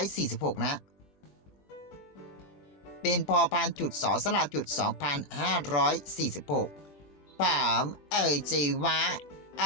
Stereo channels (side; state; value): right; late; 21 ms